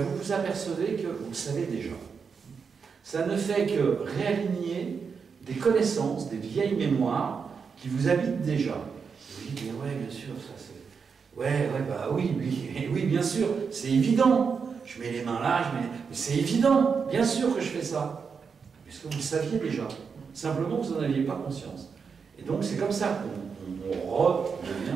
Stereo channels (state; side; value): quieter; left; 5.8 dB